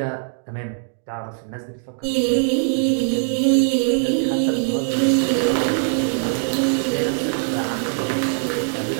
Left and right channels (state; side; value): silent; left; digital silence